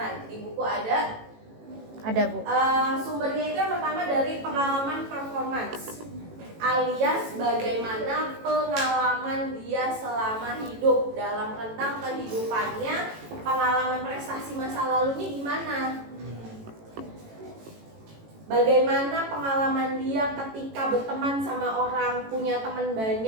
Di buku ada Bu. Sumbernya itu yang pertama dari pengalaman performance, alias bagaimana pengalaman dia selama hidup. Dalam rentang kehidupannya, pengalaman prestasi masa lalunya gimana, bagaimana pengalaman dia ketika berteman sama orang, punya teman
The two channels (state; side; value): late; left; 18 ms